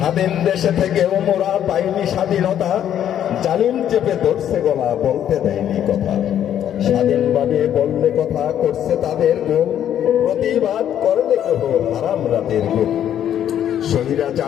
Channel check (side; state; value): right; quieter; 10.3 dB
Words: দেশে থেকেও মোরা পাইনি স্বাধীনতা, জালিম চেপে ধরছে গলা, বলতে দেয়নি কথা। স্বাধীনভাবে বললে কথা করছে তাদের গুম, প্রতিবাদ করলে কেহ হারাম রাতের গুম।